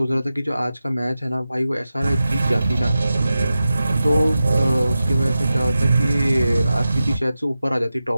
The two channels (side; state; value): both; inverted; correlation -0.93